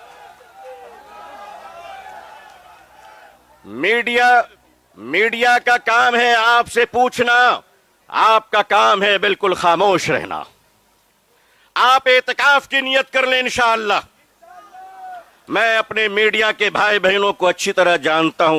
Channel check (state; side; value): identical; both; correlation 1.00